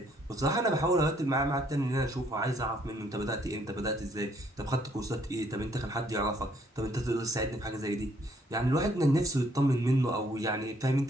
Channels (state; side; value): normal; both; correlation 0.66